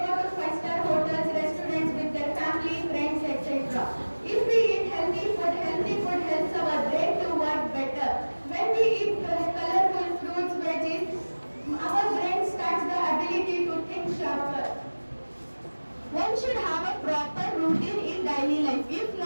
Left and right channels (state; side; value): inverted; both; correlation -1.00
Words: go to five-star hotels, restaurants with their family, friends, etc. If we eat healthy food helps our brain to work better. When we eat colorful fruits, veggies, our brain starts the ability to think sharper. One should have a proper routine in daily life. If